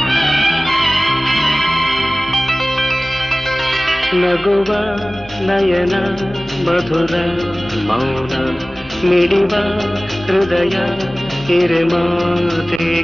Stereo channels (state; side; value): normal; both; correlation 0.98